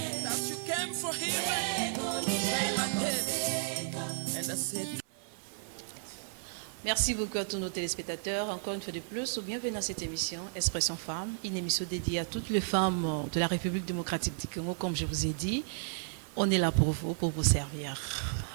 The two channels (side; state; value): left; silent; 56 dB below the other